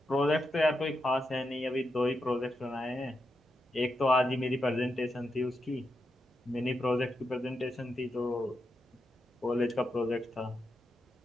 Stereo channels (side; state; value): both; normal; correlation 0.85